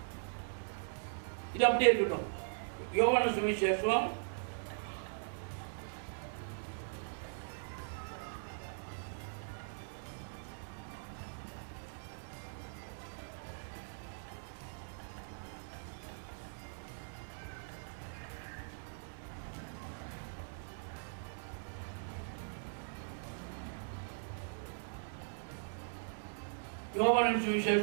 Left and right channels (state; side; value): silent; left; digital silence